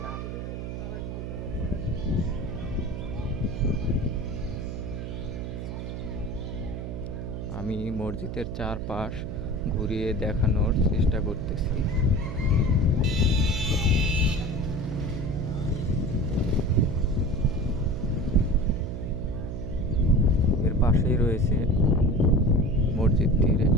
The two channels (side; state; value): right; noise; hum, 6 dB below the sound